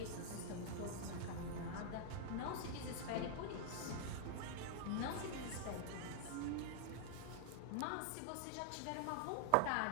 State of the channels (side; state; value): both; different; correlation 0.00